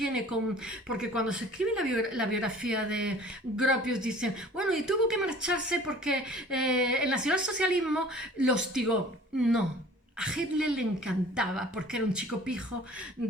porque cuando se escribe la biografía de Gropius dicen, bueno, y tuvo que marcharse porque el nacionalsocialismo lo hostigó. No. A Hitler le encantaba porque era un chico pijo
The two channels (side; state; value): both; normal; correlation 0.48